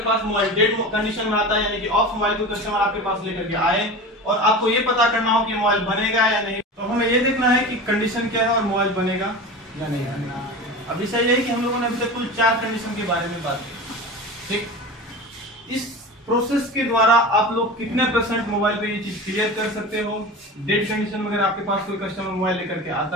पास मोबाइल डेड कंडीशन में आता है, यानी कि ऑफ मोबाइल को कस्टमर आपके पास लेकर के आए और आपको ये पता करना हो कि मोबाइल बनेगा या नहीं, तो हमें ये देखना है कि कंडीशन क्या है और मोबाइल बनेगा या नहीं बनेगा। अब विषय यही कि हम लोगों ने अभी तक कुल 4 कंडीशन के बारे में बात की, ठीक। इस प्रोसेस के द्वारा आप लोग कितने % मोबाइल पे ये चीज क्लियर कर सकते हो? डेड कंडीशन में अगर आपके पास कोई कस्टमर मोबाइल लेकर के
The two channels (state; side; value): normal; both; correlation 0.31